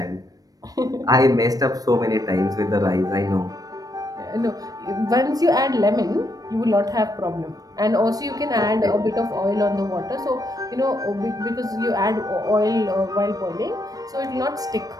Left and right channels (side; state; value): left; late; 0.18 ms